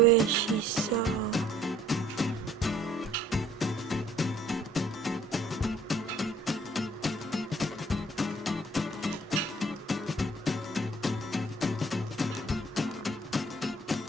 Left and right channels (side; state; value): both; normal; correlation 0.58